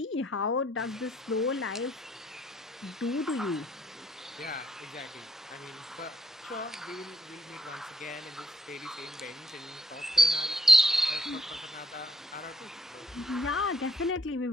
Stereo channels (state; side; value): normal; both; correlation 0.68